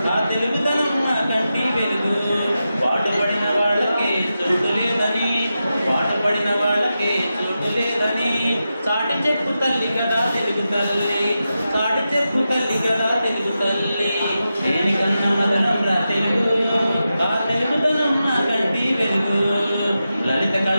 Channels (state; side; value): inverted; both; correlation -0.90